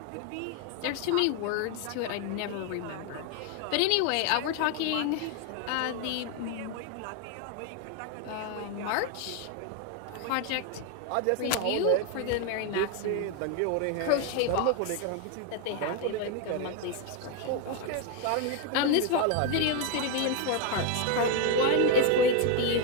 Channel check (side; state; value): both; different; correlation 0.01